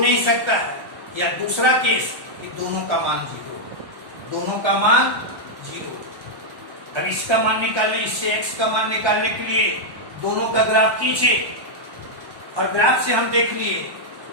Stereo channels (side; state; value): left; late; 1.1 ms